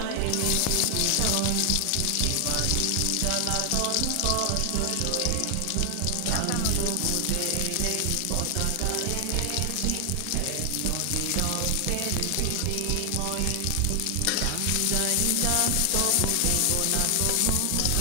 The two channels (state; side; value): different; both; correlation 0.00